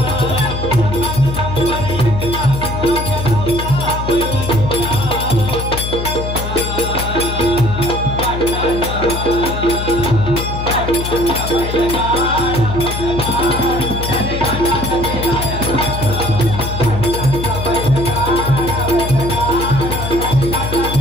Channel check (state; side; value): noise; left; hum, 4 dB below the sound